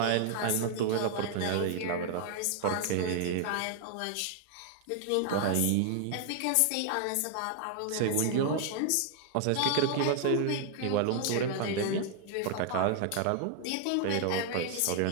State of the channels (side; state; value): both; different; correlation 0.00